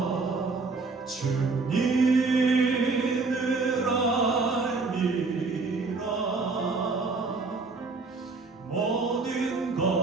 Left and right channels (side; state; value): left; quieter; 4.0 dB